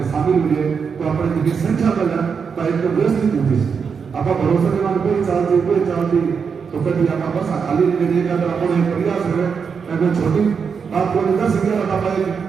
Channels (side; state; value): left; quieter; 6.1 dB